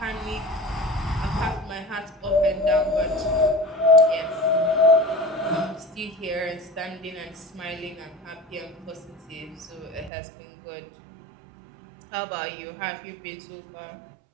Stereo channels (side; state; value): left; drops out; at 10.1 s